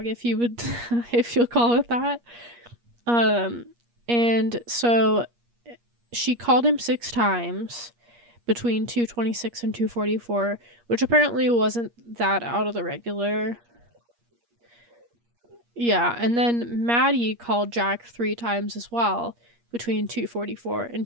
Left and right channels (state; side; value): late; left; 8.5 ms